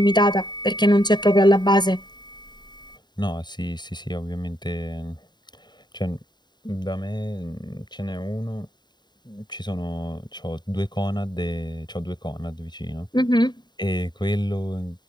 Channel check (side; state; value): right; late; 0.21 ms